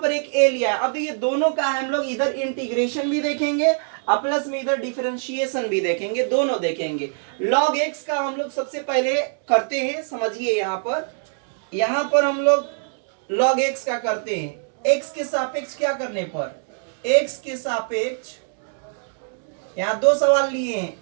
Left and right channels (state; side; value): silent; left; 63 dB below the other